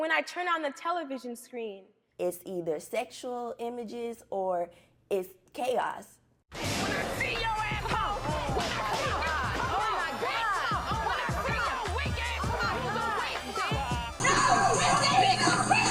I turn on the television screen, it's either sexual images or it's chaos. When I see your asshole, when I see your when I see your weak ass,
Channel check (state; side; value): identical; both; correlation 1.00